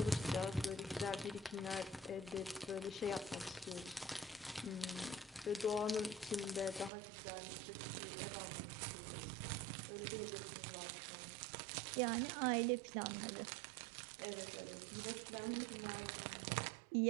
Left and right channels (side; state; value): left; drops out; at 6.9 s